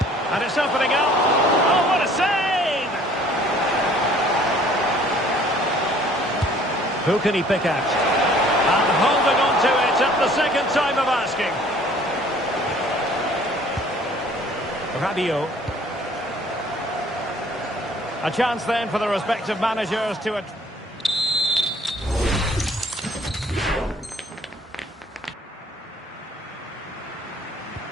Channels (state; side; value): normal; both; correlation 0.55